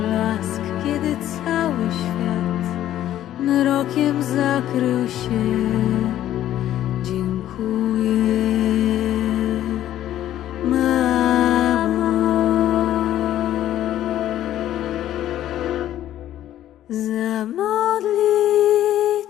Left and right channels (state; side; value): quieter; right; 12.4 dB